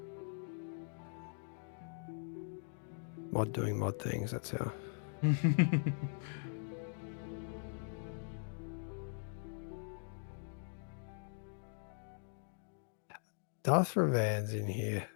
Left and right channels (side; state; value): right; silent; digital silence